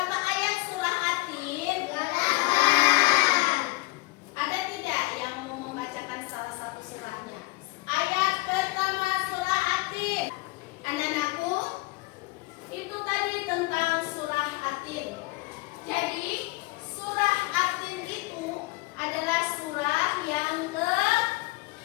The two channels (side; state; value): right; quieter; 23.3 dB